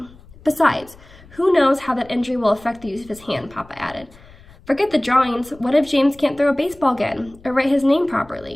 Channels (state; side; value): noise; left; rumble, 23 dB below the sound